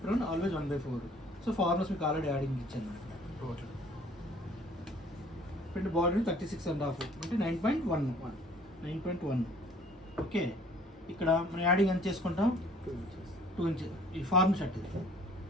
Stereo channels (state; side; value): normal; both; correlation 0.55